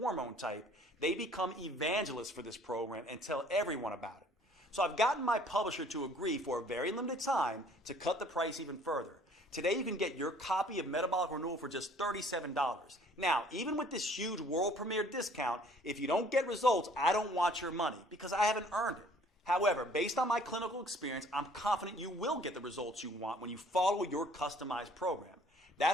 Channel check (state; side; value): normal; both; correlation 0.56